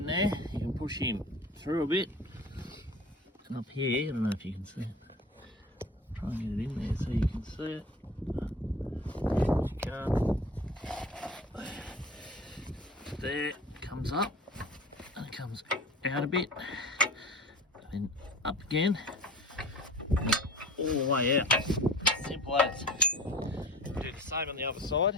there? You can push him through a bit. And up here, I don't know if you can see it. Try and get it in there so you can see it. If you can't. There, it comes up and it comes out a bit. And up again, and all the way out. Simple as. Do the same on the other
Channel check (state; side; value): normal; both; correlation 0.41